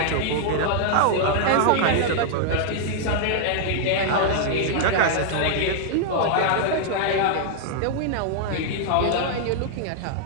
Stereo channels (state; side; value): different; both; correlation -0.01